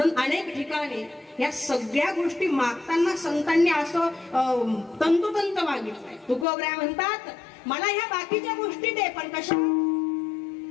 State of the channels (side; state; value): right; drops out; at 6.5 s